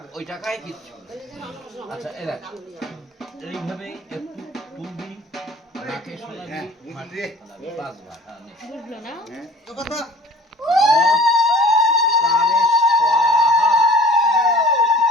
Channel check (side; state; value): both; normal; correlation 0.46